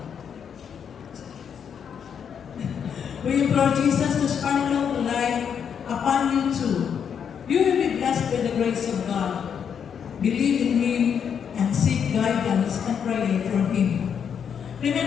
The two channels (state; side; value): quieter; right; 7.6 dB